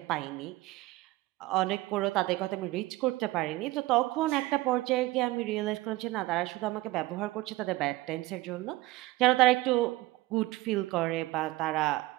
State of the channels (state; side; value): quieter; left; 19.1 dB